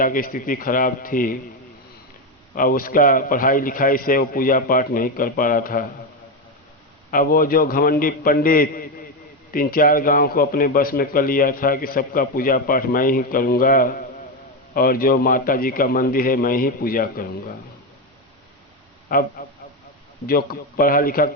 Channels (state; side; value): normal; both; correlation 0.11